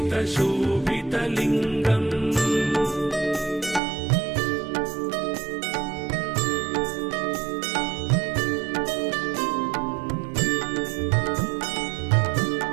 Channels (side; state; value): left; drops out; at 3.8 s